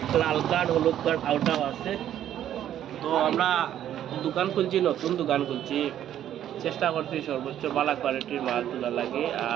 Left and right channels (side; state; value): left; quieter; 11.1 dB